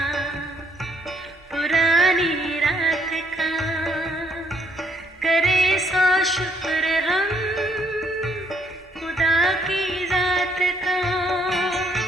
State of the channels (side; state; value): both; normal; correlation 0.69